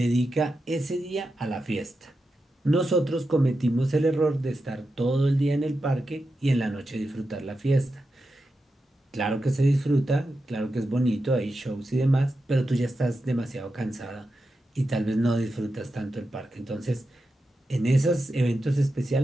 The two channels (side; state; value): both; normal; correlation 0.89